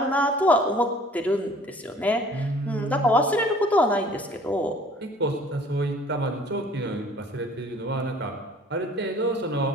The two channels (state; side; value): normal; both; correlation 0.52